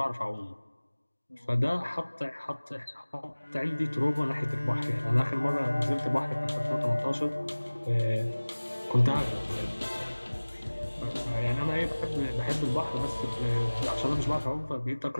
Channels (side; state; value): both; inverted; correlation -1.00